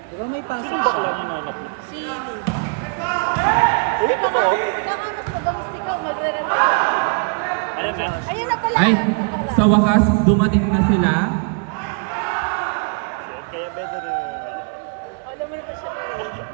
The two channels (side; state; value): left; quieter; 35.4 dB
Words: Di ba may pasok siya? Si... Hindi pa ka. Baka mas madalas ikaw magre-replace. Ano dyan? Ayun na pala. Ay, sa wakas, dumating na sila. Kaya better rin. Alam mo yung siya.